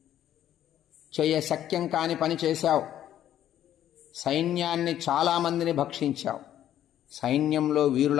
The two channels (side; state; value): right; quieter; 11.4 dB